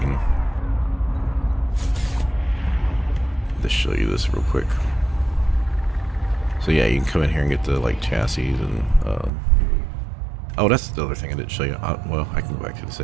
just show you this real quick. So yeah, you can come in here and get the like chassis and, oh, that's the other thing I didn't show you. Well, I can go back to the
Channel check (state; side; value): drops out; left; at 9.3 s